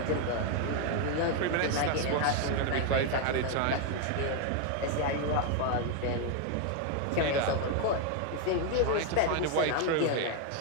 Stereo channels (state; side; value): different; both; correlation 0.01